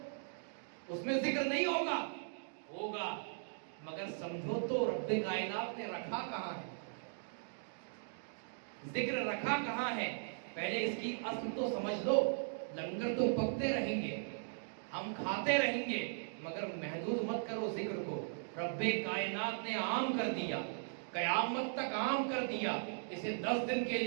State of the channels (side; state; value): left; silent; digital silence